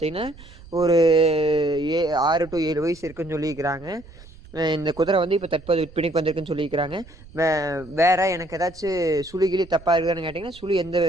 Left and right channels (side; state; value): right; noise; rumble, 20 dB below the sound